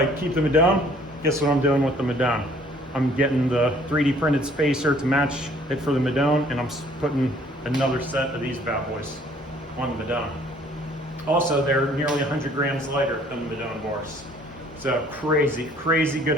keep the Madone, guess what I'm doing with the Madone? I'm getting the 3D printed spacer to match it for the Madone, and I'm putting another set of these bad boys on the Madone. Also, they're nearly 100 grams lighter than the Madone bars. So crazy, crazy good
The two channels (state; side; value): normal; both; correlation 0.58